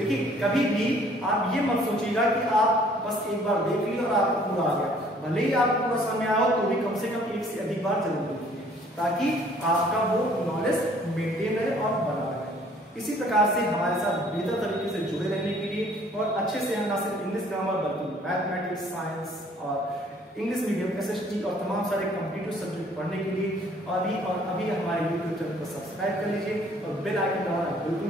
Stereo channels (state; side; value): normal; both; correlation 0.58